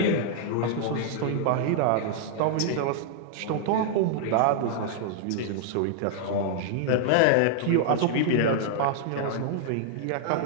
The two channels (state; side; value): different; both; correlation -0.01